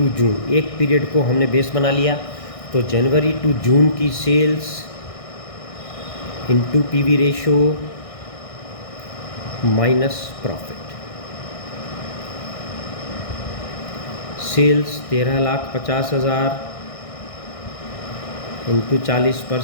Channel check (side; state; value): right; late; 1.6 ms